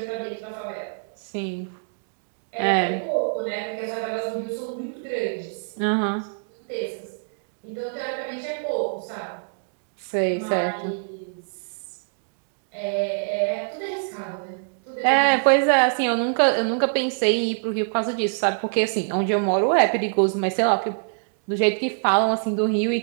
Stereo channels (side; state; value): left; silent; digital silence